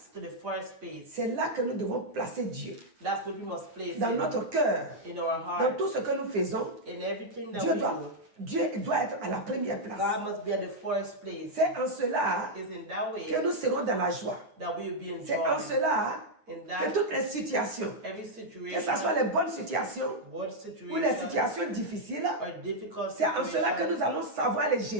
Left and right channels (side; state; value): left; late; 9.6 ms